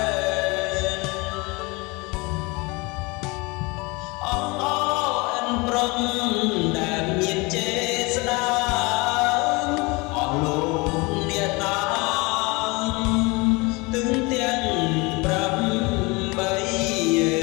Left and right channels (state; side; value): quieter; right; 26.0 dB